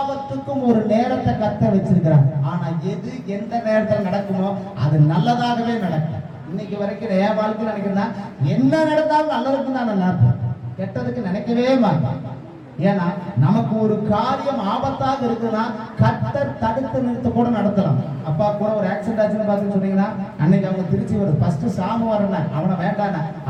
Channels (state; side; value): identical; both; correlation 1.00